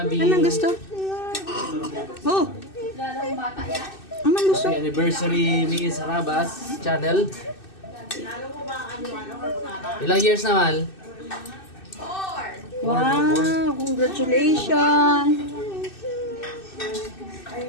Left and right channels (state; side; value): late; right; 2.6 ms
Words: Anong gusto? Oh. Anong gusto? Happy anniversary ni Sarabas channel. Ilang years na, Mal? Wow, congratulations.